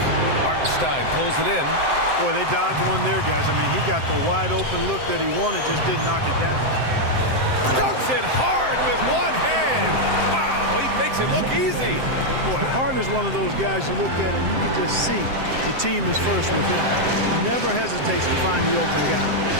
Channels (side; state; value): left; late; 7.7 ms